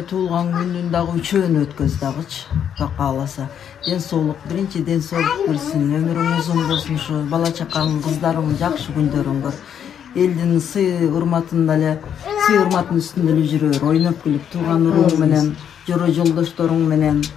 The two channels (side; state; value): right; quieter; 8.7 dB